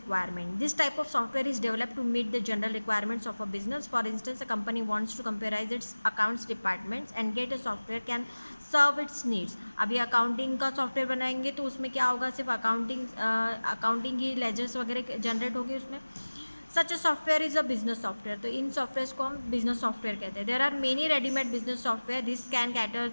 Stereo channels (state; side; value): inverted; both; correlation -1.00